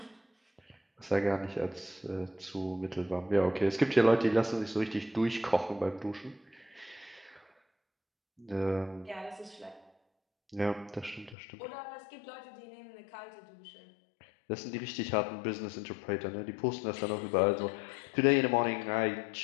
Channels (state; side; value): drops out; right; at 11.4 s